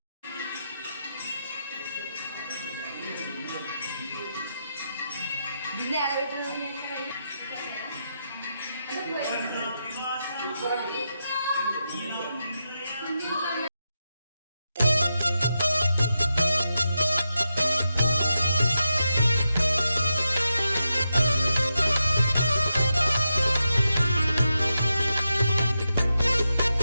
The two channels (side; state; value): both; inverted; correlation -0.87